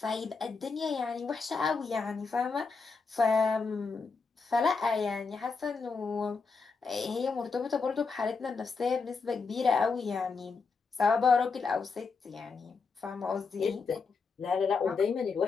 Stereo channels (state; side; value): quieter; right; 4.7 dB